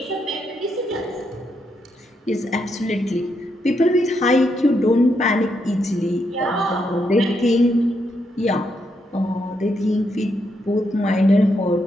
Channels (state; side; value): normal; both; correlation 0.79